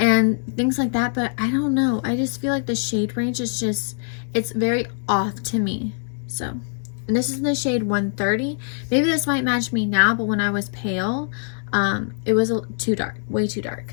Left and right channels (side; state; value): right; silent; digital silence